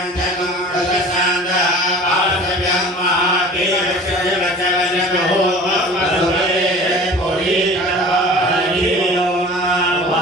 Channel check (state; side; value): normal; both; correlation 0.42